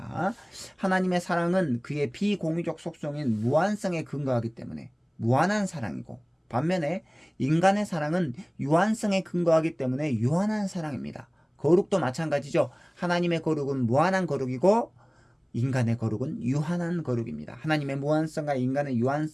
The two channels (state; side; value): identical; both; correlation 1.00